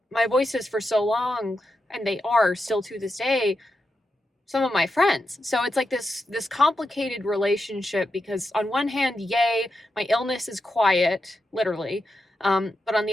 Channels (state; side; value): normal; both; correlation 0.87